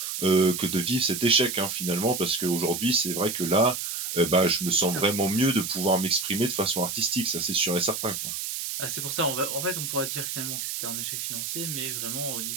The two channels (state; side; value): noise; right; hiss, 4 dB below the sound